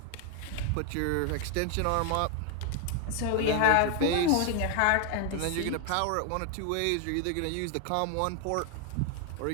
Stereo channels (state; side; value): different; both; correlation 0.00